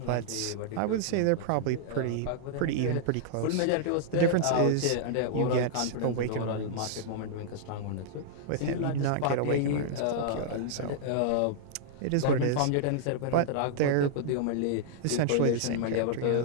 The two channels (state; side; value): different; both; correlation -0.01